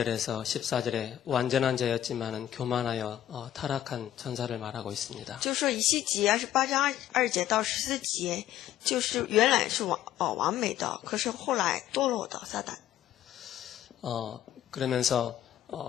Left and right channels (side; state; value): right; quieter; 12.0 dB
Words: 14절에 완전한 자였지만은 교만하여 타락한 천사를 말하고 있습니다. 就说以西结28章2节到14节，就是原来是完美的，可是后来堕落的撒旦。 그러면서